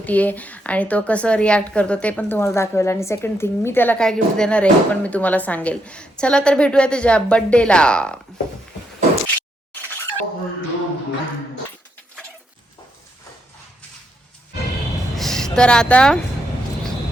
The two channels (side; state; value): both; normal; correlation 0.78